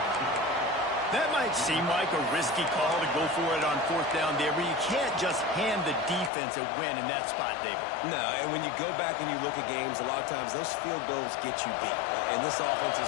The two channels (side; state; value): right; drops out; at 6.3 s